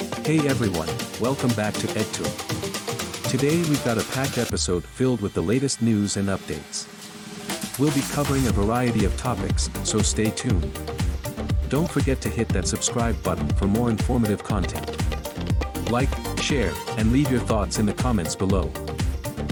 Hey everyone, welcome back to EdTour. Today we've got a packed episode filled with the latest news and updates. We'll be covering a variety of topics, so stay tuned. Don't forget to hit that subscribe button for more informative content. Like, share, and leave your thoughts in the comments below.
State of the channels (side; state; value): both; identical; correlation 1.00